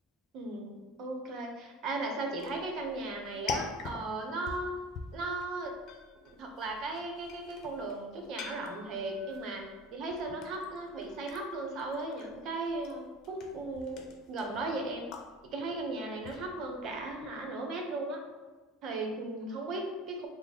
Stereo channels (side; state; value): both; normal; correlation 0.38